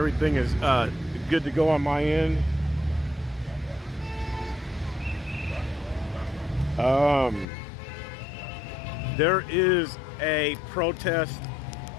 everything is good to go on my end. There is a protest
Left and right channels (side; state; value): right; drops out; at 7.5 s